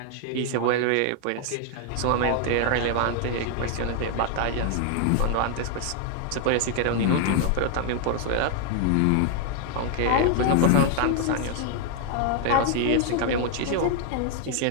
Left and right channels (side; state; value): both; different; correlation 0.00